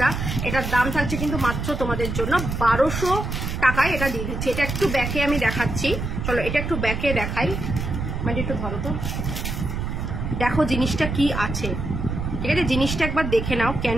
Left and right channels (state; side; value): noise; right; rumble, 3 dB below the sound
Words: এটার দাম থাকছে কিন্তু মাত্র তোমাদের জন্য 1200 টাকায় এটা দিয়ে দিচ্ছি। এটা একটু ব্যাকে আমি দেখাচ্ছি, চলো এটা একটু ব্যাকে দেখাই, মানে একটু ধরো তো, দেখো জিনিসটা কি আছে, ঠিক আছে? জিনিসটা একবার দেখে নাও, কেন